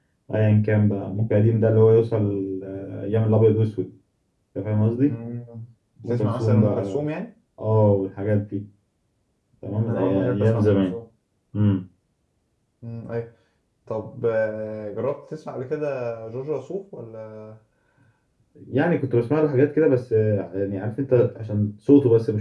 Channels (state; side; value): identical; both; correlation 1.00